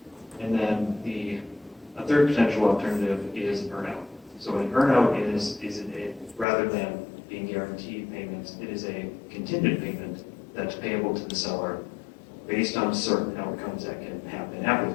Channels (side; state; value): right; drops out; at 6.5 s